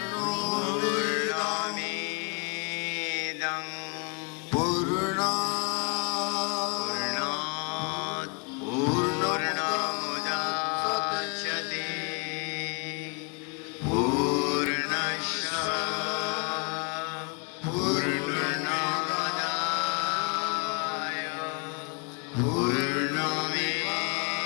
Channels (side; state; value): right; quieter; 35.0 dB